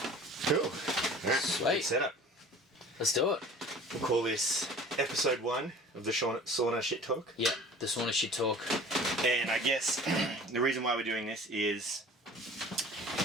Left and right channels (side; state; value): both; normal; correlation 0.44